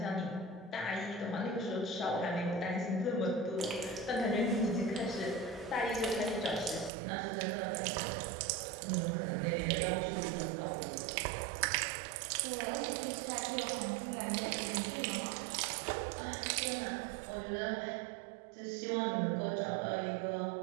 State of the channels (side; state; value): left; drops out; at 6.9 s